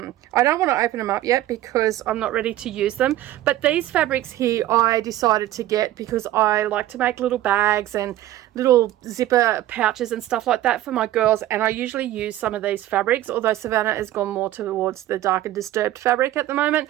don't want to open them up yet because I'm not ready to use them, but these fabrics here I decided to get because I like to make little bags and little zipper pouches and stuff like that for my girls, and I usually use some of these fabrics, although Savannah has gone more towards the dark and disturbed fabric at the moment,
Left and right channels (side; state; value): left; quieter; 14.1 dB